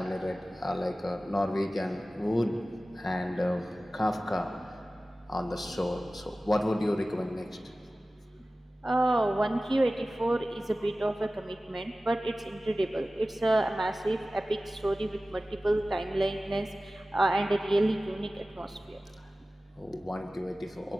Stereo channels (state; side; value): normal; both; correlation 0.96